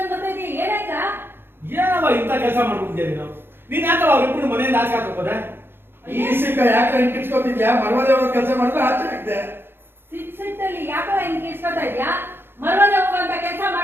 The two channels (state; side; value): late; left; 0.10 ms